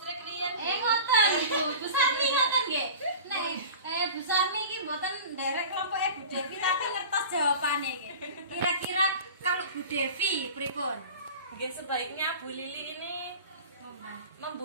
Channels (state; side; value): inverted; both; correlation -0.37